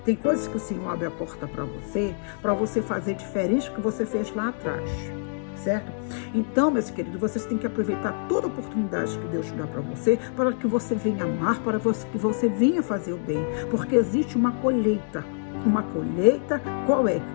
Tem coisas que o Senhor abre a porta para você fazer diferente do que você fez lá atrás, certo? Então, meus queridos, vocês têm que aproveitar toda a oportunidade que Deus te dá para que você venha amar, para que você venha fazer o bem, porque existe uma colheita. Uma colheita, qual é?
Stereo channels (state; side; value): silent; right; digital silence